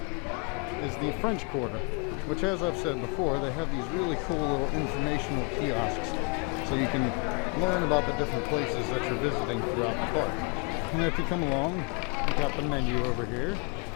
is the French Quarter, which, as I've said before, they have these really cool little informational kiosks so you can learn about the different places that you're visiting throughout the park. And if you come along, we've got the menu over here.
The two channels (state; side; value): quieter; right; 30.8 dB